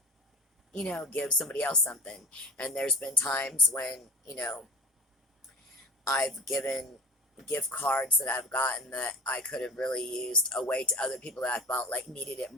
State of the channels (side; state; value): both; normal; correlation 0.32